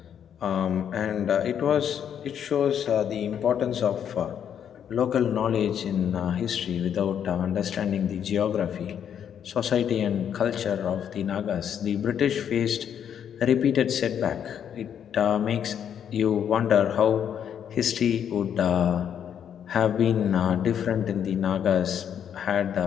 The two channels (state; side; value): quieter; right; 8.8 dB